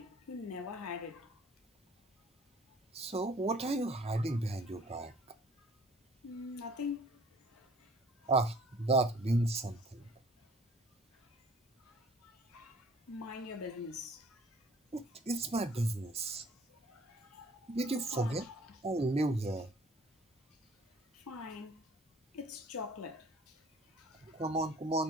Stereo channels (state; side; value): normal; both; correlation 0.53